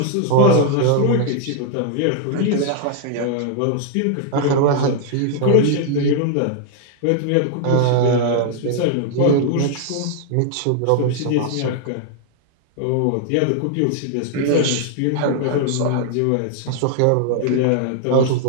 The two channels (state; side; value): different; both; correlation 0.00